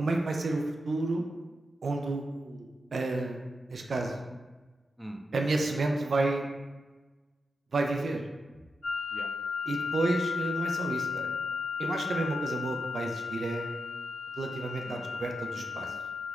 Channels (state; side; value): normal; both; correlation 0.85